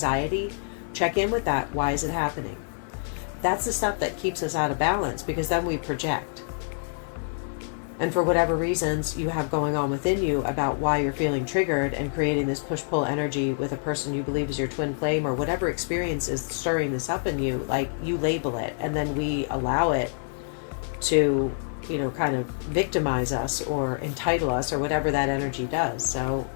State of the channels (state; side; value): silent; right; 57 dB below the other